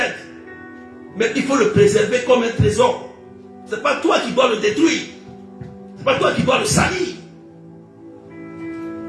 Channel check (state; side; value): identical; both; correlation 1.00